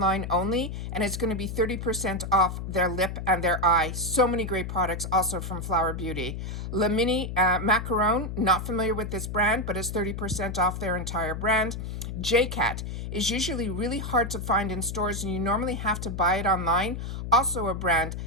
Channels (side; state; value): left; noise; hum, 6 dB below the sound